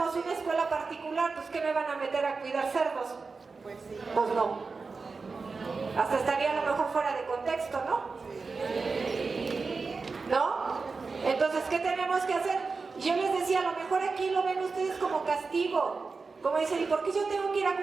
una escuela particular, pues ¿qué me van a meter a cuidar cerdos? Pues no. Hasta estaría a lo mejor fuera de contexto, ¿no? ¿No? Entonces, ¿qué tenemos que hacer? Yo les decía, a lo mejor aquí lo ven ustedes como castigo. Como dicen, ¿y por qué yo tengo que ir a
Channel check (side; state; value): left; quieter; 4.4 dB